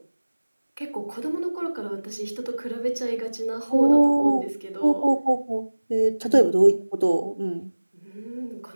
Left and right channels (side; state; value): both; inverted; correlation -1.00